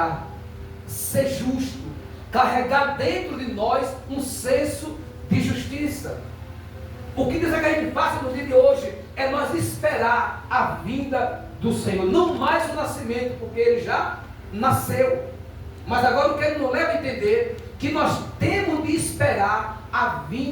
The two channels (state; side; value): identical; both; correlation 1.00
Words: ser justo, carregar dentro de nós um senso de justiça. justiça. O que Deus quer que a gente faça no dia de hoje é nós esperar a vinda do Senhor, não mais o nascimento, porque Ele já nasceu. Mas agora o que Ele nos leva a entender que nós temos de esperar a